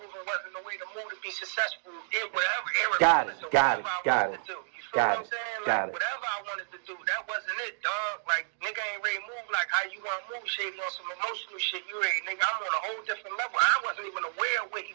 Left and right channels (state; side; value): silent; left; digital silence